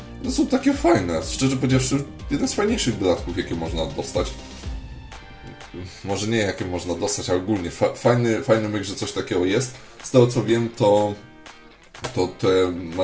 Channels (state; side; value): identical; both; correlation 1.00